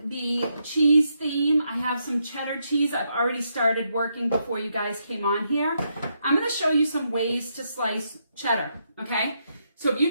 the cheese theme, I have some cheddar cheese. I've already started working before you guys came on here. I'm going to show you some ways to slice cheddar, okay? So if you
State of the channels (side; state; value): both; inverted; correlation -0.80